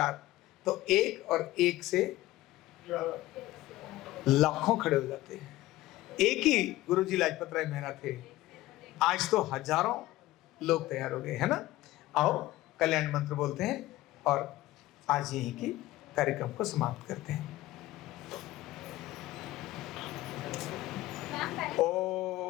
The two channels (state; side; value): quieter; right; 16.9 dB